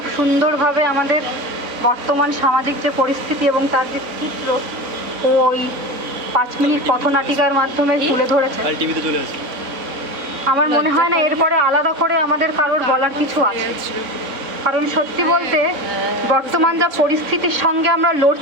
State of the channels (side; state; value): left; late; 4.0 ms